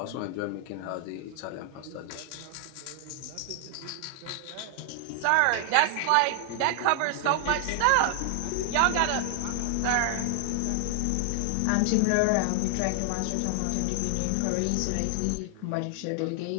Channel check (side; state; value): both; different; correlation 0.00